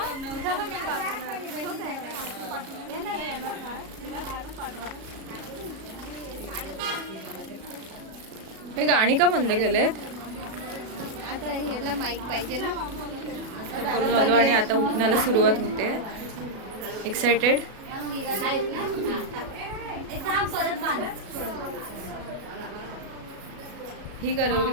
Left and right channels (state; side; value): late; left; 37 ms